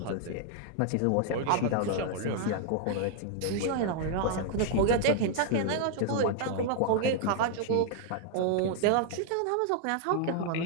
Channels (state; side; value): different; both; correlation 0.00